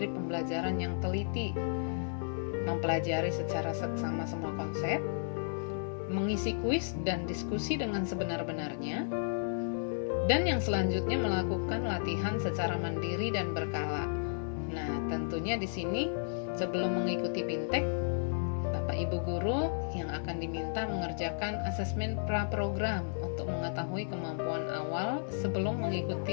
pembelajaran yang teliti, mempelajari secara seksama semua konsep, mengisi kuis dan diskusi dengan sebenar-benarnya, dan yang selanjutnya melakukan latihan secara mandiri dan berkala. Nah, tentunya di sini sebelum mengikuti BIMTEK, Bapak Ibu guru yang akan diminta mengerjakan asesmen pra-program untuk mengetahui kemampuan awal sebelum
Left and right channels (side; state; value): right; silent; digital silence